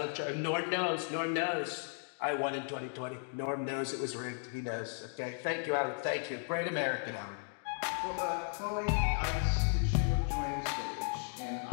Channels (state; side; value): silent; right; 54 dB below the other